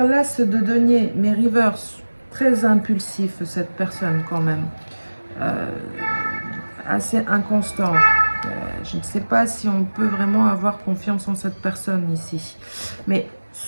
l'as de denier, mais reverse. Très impulsif cette personne quand même. Euh, Assez inconstant. Je ne sais pas si on peut vraiment avoir confiance en cette personne ici. Mais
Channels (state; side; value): inverted; both; correlation -1.00